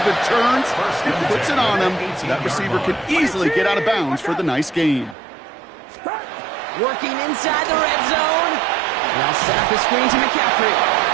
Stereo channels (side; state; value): left; drops out; at 5.2 s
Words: turns, and puts it on him, so that receiver can easily get out of bounds for the nice gain. Working inside the red zone. And I'll set up the screen to McCaffrey.